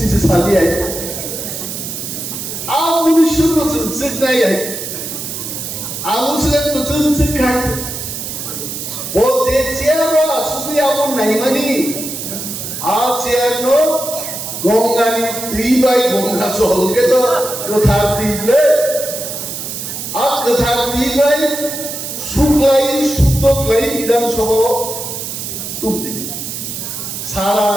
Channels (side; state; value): right; noise; hiss, 6 dB below the sound